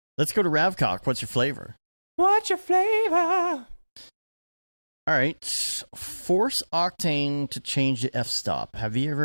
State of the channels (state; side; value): inverted; both; correlation -1.00